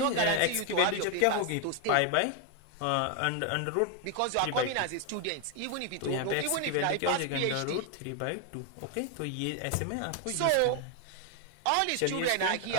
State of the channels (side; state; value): both; different; correlation 0.00